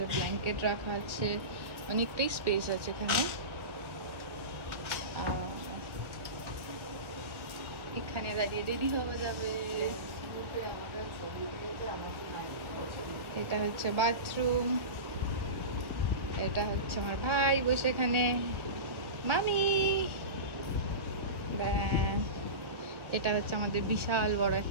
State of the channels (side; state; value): left; late; 1.6 ms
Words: ব্ল্যাঙ্কেট রাখা আছে, অনেকটাই স্পেস আছে এখানে। এখানে দাঁড়িয়ে রেডি হওয়া যাবে। এটা হচ্ছে বাথরুম, এটা হচ্ছে আমার ভাই বসে এখানে, মামি। এটা হচ্ছে আমাদের বিশাল বড়